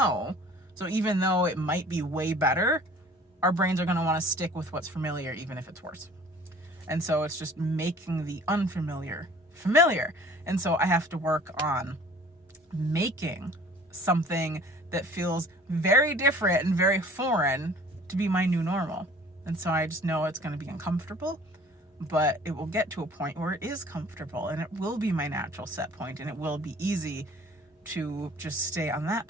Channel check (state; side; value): normal; both; correlation 0.50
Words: So even though it might be way better, our brains are going to want to stick with what's familiar, even if it's worse. And so it's just making the unfamiliar familiar. And so I have to work on making something that feels very different and very foreign to be my new normal. And so I just know it's going to be uncomfortable, but it will get to a point where it is comfortable and it will be my natural set point, and it will be easy to just stay on that